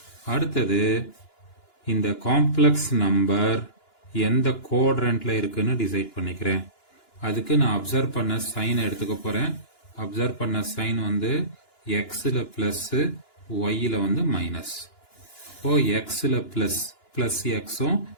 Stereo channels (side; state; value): right; late; 2.9 ms